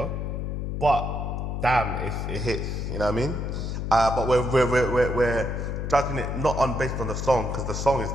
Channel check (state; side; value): noise; left; hum, 3 dB below the sound